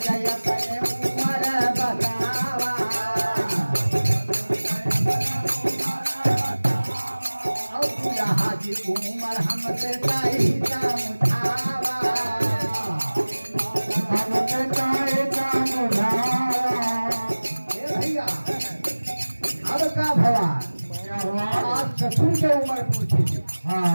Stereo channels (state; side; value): inverted; both; correlation -1.00